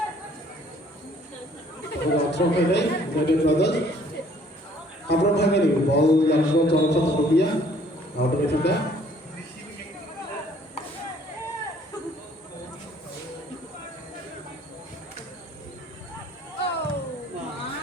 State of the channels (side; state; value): both; normal; correlation 0.59